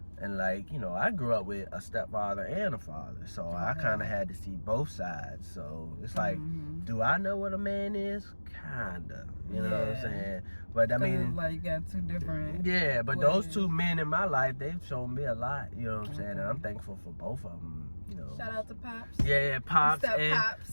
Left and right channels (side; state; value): both; inverted; correlation -1.00